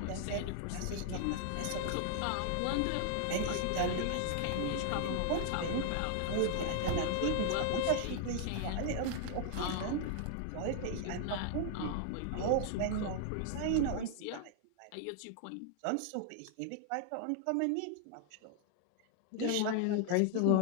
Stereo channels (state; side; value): different; both; correlation 0.00